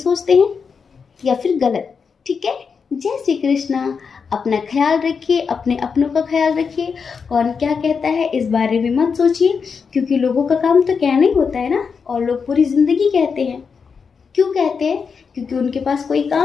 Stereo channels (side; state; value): right; quieter; 5.7 dB